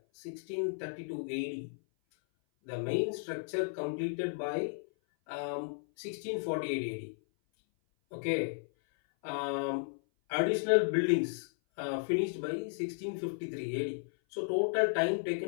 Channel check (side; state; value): right; silent; 55 dB below the other